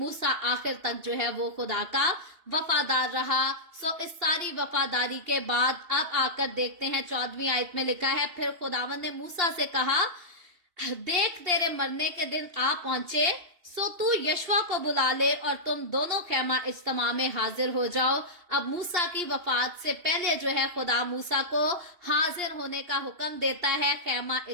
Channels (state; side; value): late; left; 2.8 ms